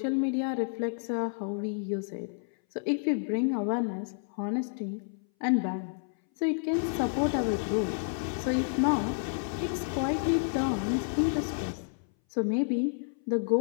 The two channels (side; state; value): right; silent; 58 dB below the other